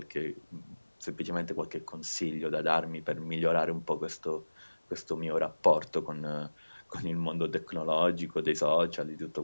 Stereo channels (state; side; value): inverted; both; correlation -1.00